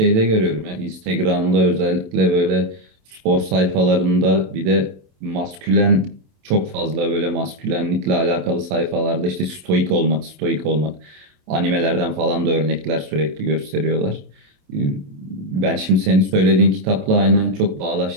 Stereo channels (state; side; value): late; left; 27 ms